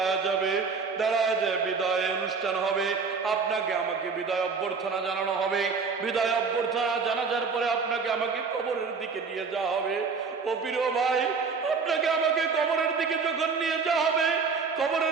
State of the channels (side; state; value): left; quieter; 5.1 dB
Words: যাবে, দাঁড়ায় যায় বিদায় অনুষ্ঠান হবে, আপনাকে আমাকে বিদায় অভ্যর্থনা জানানো হবে। বিদায় অভ্যর্থনা জানাজার পরে আপনাকে আমাকে কবরের দিকে নিয়ে যাওয়া হবে। ও প্রিয় ভাই, আপনাকে আমাকে কবরের দিকে যখন নিয়ে যাওয়া হবে,